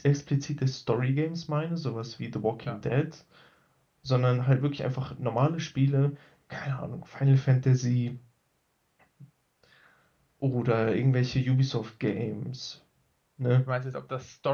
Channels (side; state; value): both; identical; correlation 1.00